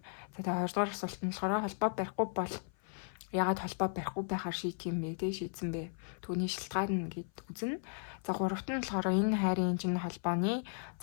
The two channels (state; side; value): silent; right; 54 dB below the other